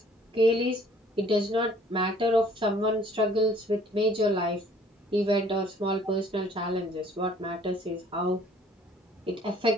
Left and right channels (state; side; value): normal; both; correlation 0.57